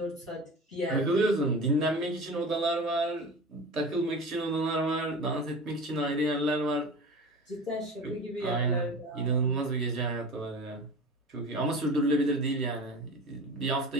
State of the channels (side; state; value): both; normal; correlation 0.35